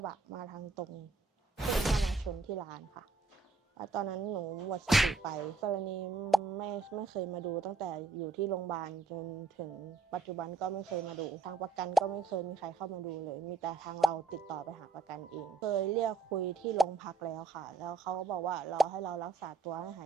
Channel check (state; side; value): quieter; left; 4.0 dB